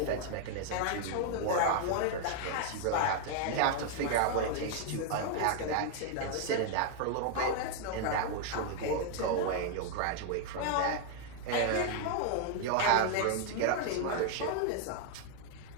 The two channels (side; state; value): both; different; correlation 0.00